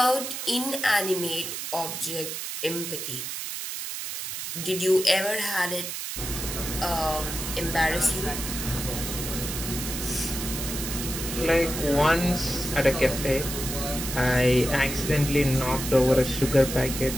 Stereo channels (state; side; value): noise; right; hiss, 6 dB below the sound